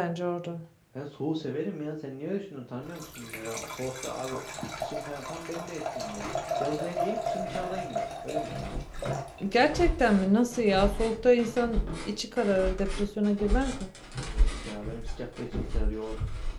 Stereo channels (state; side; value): identical; both; correlation 1.00